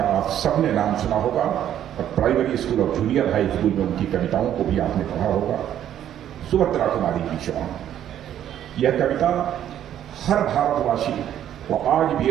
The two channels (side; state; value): left; quieter; 10.8 dB